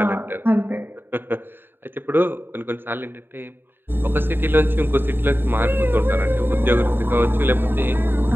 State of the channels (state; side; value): late; left; 0.099 ms